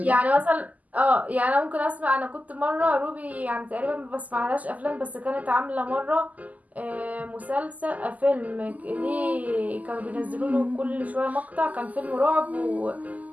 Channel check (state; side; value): late; left; 0.077 ms